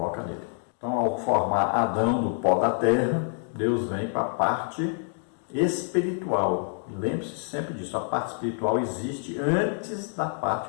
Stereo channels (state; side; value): silent; right; 57 dB below the other